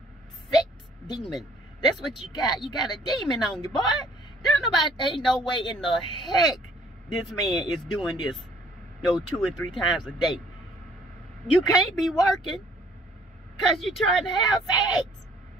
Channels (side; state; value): both; normal; correlation 0.59